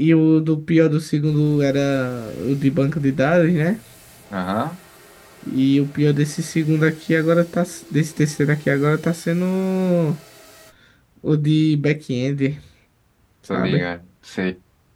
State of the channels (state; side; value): identical; both; correlation 1.00